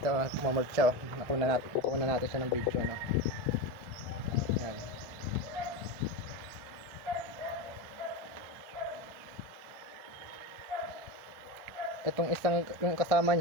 mamolt siya, kukuha na natin siya ng video, no. Yan, itong isang yung kasama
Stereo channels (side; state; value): left; late; 1.3 ms